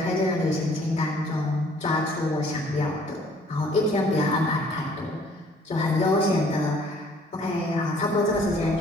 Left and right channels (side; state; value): both; normal; correlation 0.58